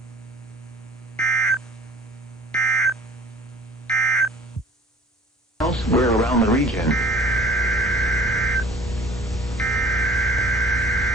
Elsewhere around the region.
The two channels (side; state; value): both; normal; correlation 0.48